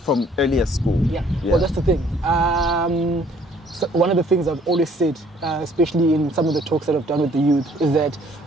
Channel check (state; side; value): normal; both; correlation 0.59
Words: from earlier school? Yeah. Well, that's the thing. So one of the things I've always said, especially in some of the talks that I've done with the youth, is that